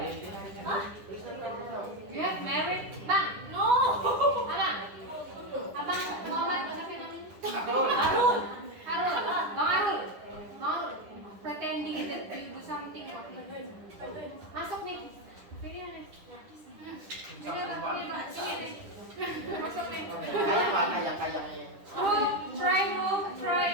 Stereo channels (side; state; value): left; late; 10 ms